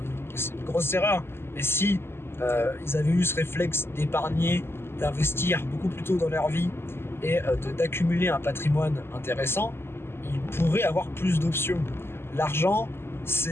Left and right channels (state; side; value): late; right; 0.12 ms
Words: grosse erreur. Et si ils avaient eu ce réflexe d'épargner, d'investir beaucoup plus tôt dans leur vie et d'accumuler un patrimoine intéressant, ils pourraient avoir plus d'options. L'argent,